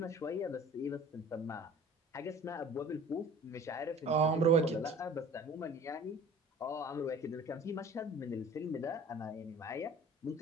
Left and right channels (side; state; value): both; normal; correlation 0.45